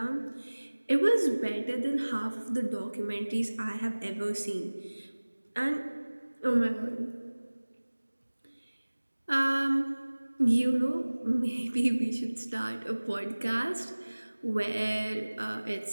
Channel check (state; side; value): inverted; both; correlation -1.00